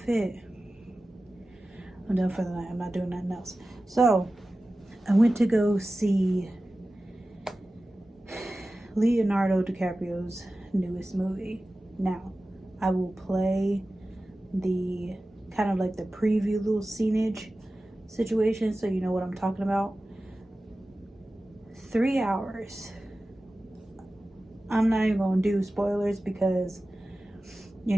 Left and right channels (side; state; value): both; normal; correlation 0.95